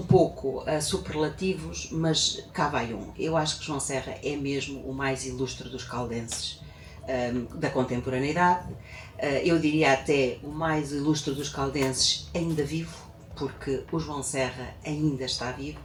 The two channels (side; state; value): both; identical; correlation 1.00